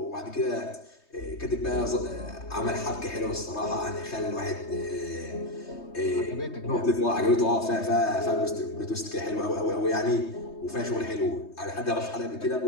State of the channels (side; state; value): right; late; 3.2 ms